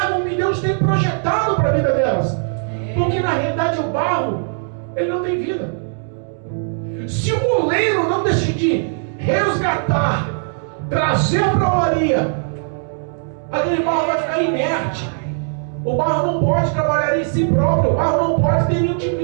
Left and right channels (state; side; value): silent; left; 66 dB below the other